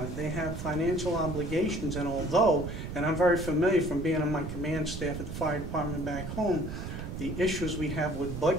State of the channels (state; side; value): noise; right; rumble, 7 dB below the sound